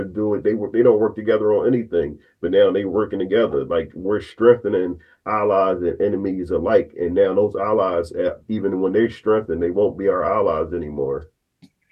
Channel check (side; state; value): both; identical; correlation 1.00